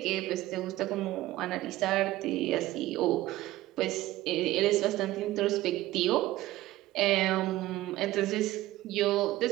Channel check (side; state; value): left; quieter; 16.4 dB